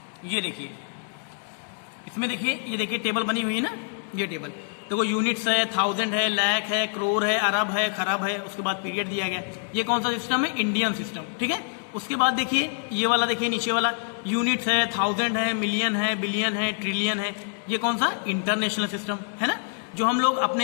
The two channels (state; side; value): silent; right; 61 dB below the other